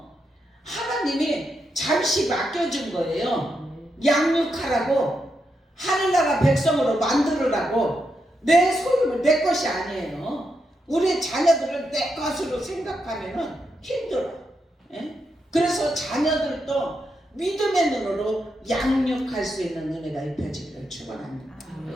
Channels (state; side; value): normal; both; correlation 0.83